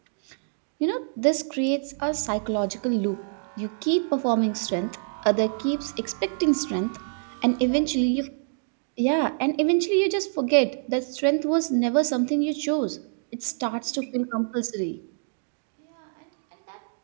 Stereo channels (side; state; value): left; silent; digital silence